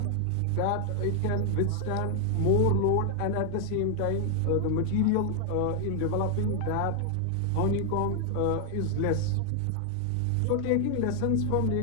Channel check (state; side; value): different; both; correlation 0.00